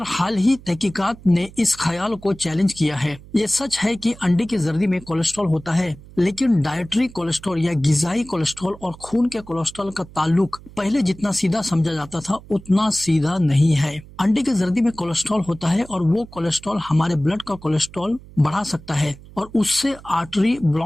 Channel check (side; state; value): right; noise; hum, 20 dB below the sound